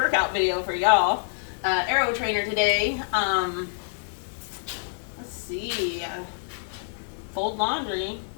video for y'all. Aero trainer today. Let's see. Fold laundry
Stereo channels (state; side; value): silent; right; digital silence